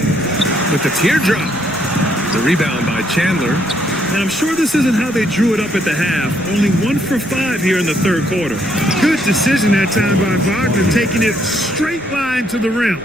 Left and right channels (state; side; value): noise; left; rumble, 23 dB below the sound